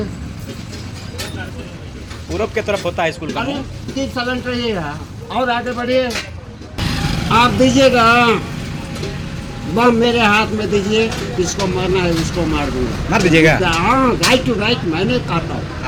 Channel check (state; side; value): identical; both; correlation 1.00